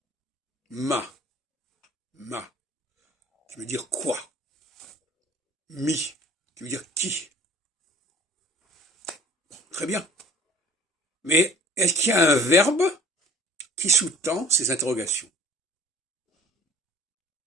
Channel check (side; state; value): both; normal; correlation 0.47